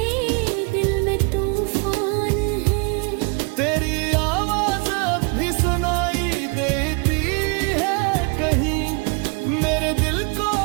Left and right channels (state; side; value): quieter; left; 33.9 dB